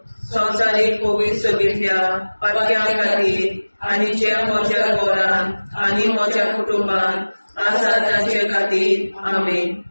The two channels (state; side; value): inverted; both; correlation -1.00